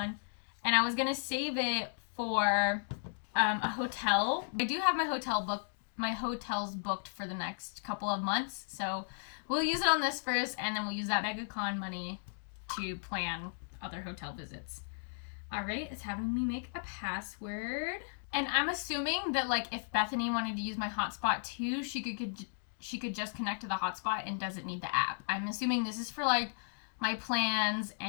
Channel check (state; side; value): silent; right; digital silence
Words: And I was going to save it for a hotel. I do have my hotels booked for the next couple of months. So we'll use it on this first, and then we'll use that MegaCon money to plan other hotel visits. All right, it's having me make a password. And I'm assuming that like if Bethany wanted to use my hotspot too, she could just connect to the hotspot and doesn't need the app. I'm assuming this is for like my plans